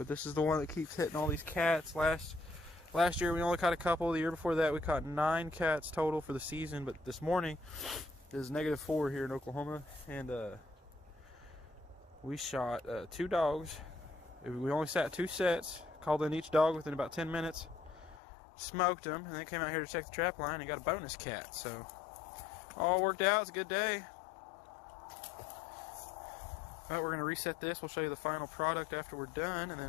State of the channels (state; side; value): drops out; right; at 18.2 s